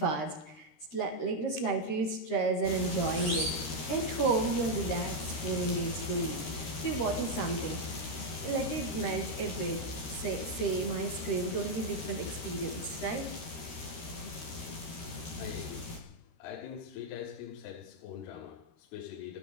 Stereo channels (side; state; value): right; late; 13 ms